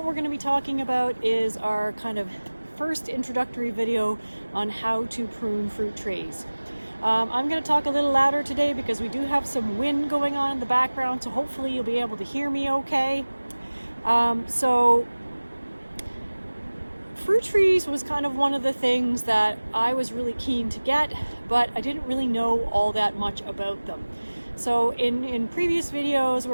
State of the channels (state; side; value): inverted; both; correlation -1.00